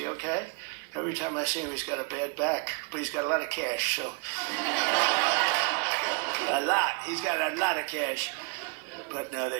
okay? Every time I see him, he's got a bad back, but he's got a lot of cash, so. A lot. He's got a lot of cash. But no,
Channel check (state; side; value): quieter; left; 30.9 dB